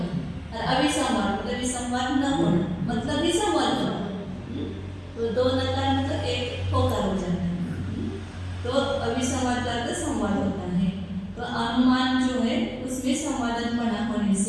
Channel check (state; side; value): identical; both; correlation 1.00